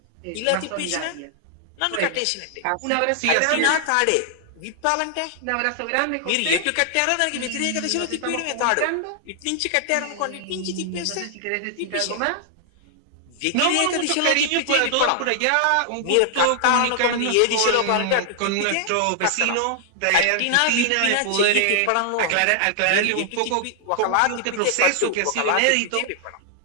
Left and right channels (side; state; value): both; different; correlation 0.00